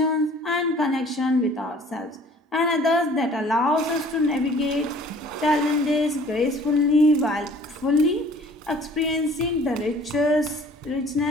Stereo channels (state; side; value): normal; both; correlation 0.52